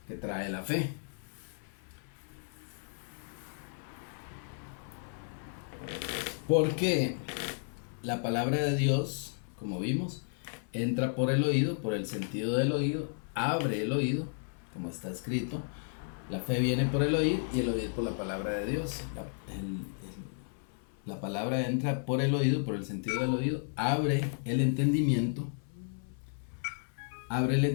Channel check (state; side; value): silent; right; 56 dB below the other